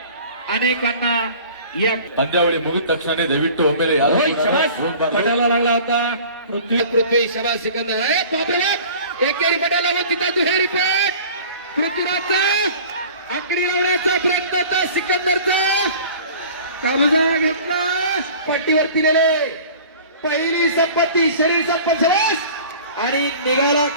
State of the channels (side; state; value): both; inverted; correlation -0.44